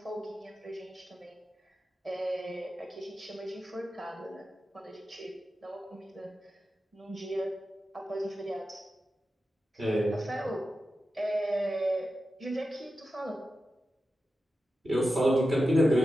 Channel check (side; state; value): both; normal; correlation 0.92